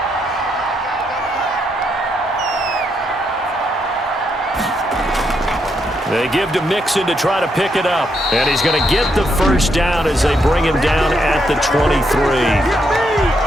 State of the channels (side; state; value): both; normal; correlation 0.78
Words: They give to Mixon to try to pick it up. And he's going to get the first down as they bring him down at the 23.